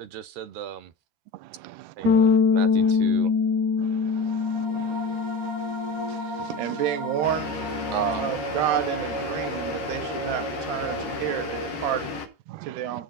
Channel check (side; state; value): left; late; 13 ms